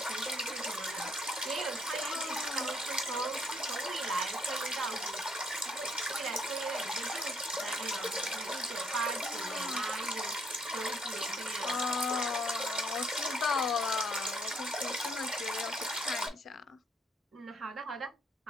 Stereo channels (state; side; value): normal; both; correlation 0.67